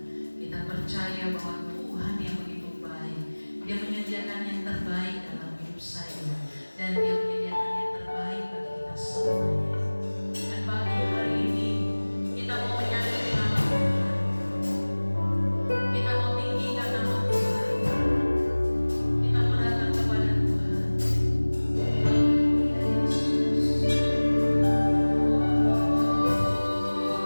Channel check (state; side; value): inverted; both; correlation -1.00